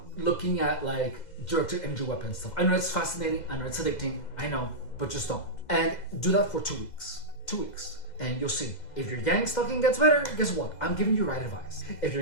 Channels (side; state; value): right; late; 2.0 ms